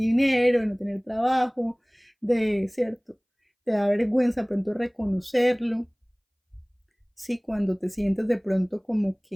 de no tener trabajo, ¿cierto? Te da vergüenza de pronto reconocerlo, sí, cuando te sientes de pronto como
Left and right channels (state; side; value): identical; both; correlation 1.00